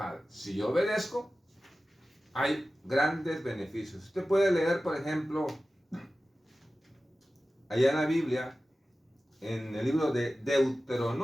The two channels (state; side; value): normal; both; correlation 0.95